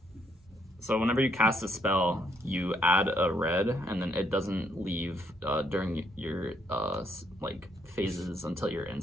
So whenever you cast a spell, you add a red, and then it doesn't leave during your phases until your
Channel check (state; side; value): normal; both; correlation 0.71